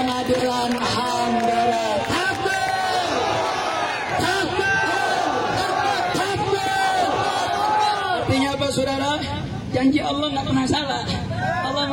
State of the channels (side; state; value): both; identical; correlation 1.00